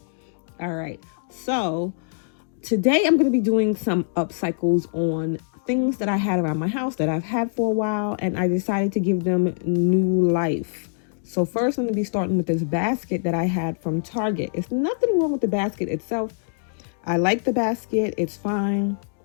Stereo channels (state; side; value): silent; right; digital silence